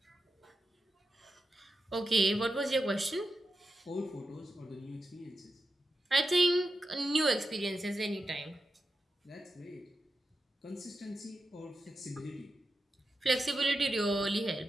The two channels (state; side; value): normal; both; correlation 0.89